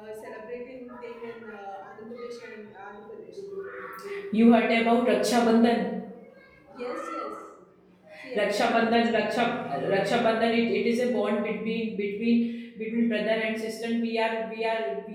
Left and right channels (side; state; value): both; identical; correlation 1.00